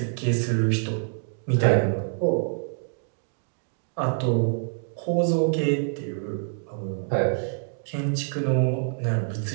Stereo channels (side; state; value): left; silent; digital silence